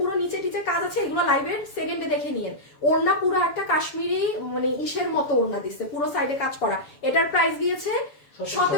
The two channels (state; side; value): late; right; 7.0 ms